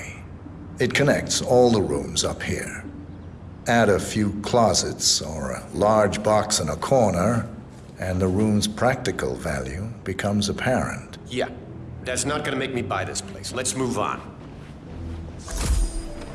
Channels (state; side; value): identical; both; correlation 1.00